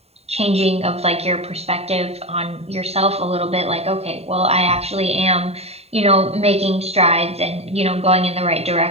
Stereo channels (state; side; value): late; left; 0.30 ms